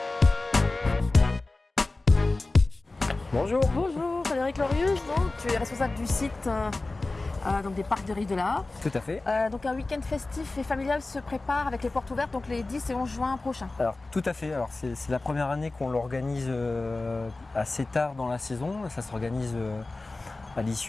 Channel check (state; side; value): quieter; right; 3.2 dB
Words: Bonjour. Bonjour Frédéric Lorius, donc, tu es responsable du site donc des parcs des Rives de la Haye. Tout à fait. Donc un week-end festif et familial se prépare avec les portes ouvertes donc les 10 et 11 juin prochains. Alors tout à fait. Alors c'est la première année qu'on l'organise assez tard dans la saison. Ça s'organise à